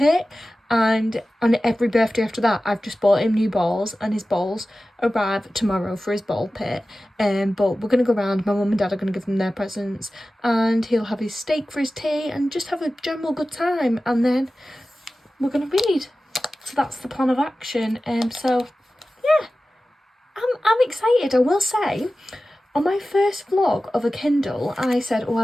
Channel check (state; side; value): normal; both; correlation 0.95